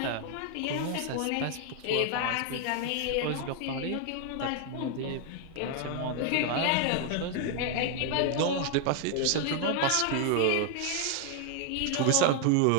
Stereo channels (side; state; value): both; different; correlation 0.00